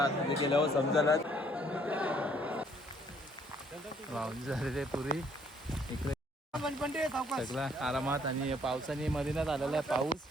तिथे गेल्यावर समजायला वाहून झालेले पुरी इकडे सगळं आरामात. आणि पावसाने मधीनात आलेला आहे पाऊस.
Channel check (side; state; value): both; normal; correlation 0.64